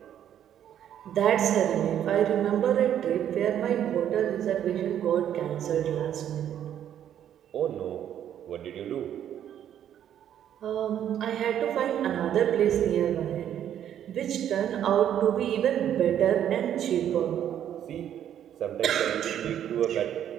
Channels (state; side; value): quieter; left; 10.2 dB